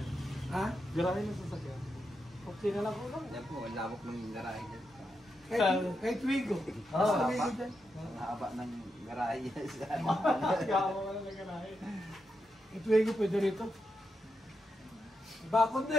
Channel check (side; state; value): both; normal; correlation 0.85